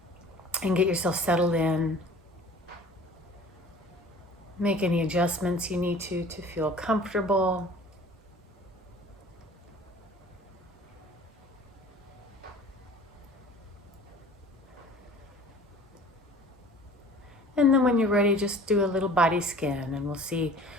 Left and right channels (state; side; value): normal; both; correlation 0.46